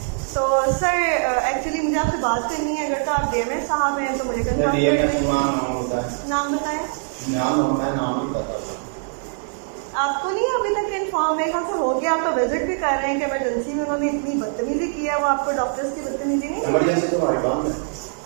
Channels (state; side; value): silent; left; 62 dB below the other